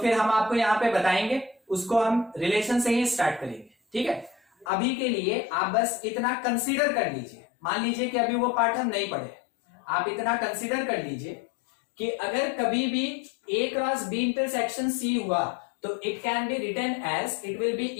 हम आपको यहाँ पे बताएंगे, उसको हम रिलेशन से ही स्टार्ट करेंगे, ठीक है। अभी के लिए आप बस इतना कंसीडर कर लीजिए, मान लीजिए कि अभी वो पार्ट हम नहीं पढ़े, आप इतना कंसीडर कर लीजिए कि अगर कभी भी A cross B intersection C हुआ तो it can be written as it will be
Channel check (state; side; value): drops out; right; at 4.7 s